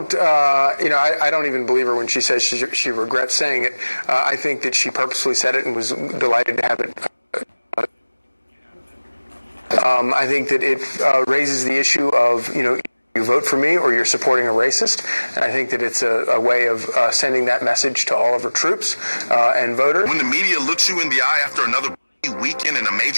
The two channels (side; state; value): both; inverted; correlation -1.00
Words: don't even believe her when she says she regrets saying it. I think that she purposely said it and was delighted to have it. I think that it raises the issue of, you vote for me or you're supporting a racist. And I think that it's a way of sending that message to all of our troops and voters. When the media looks you in the eye after another weekend in a